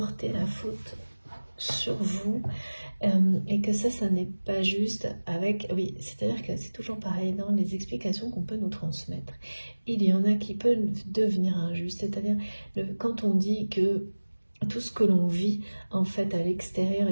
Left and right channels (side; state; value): both; inverted; correlation -1.00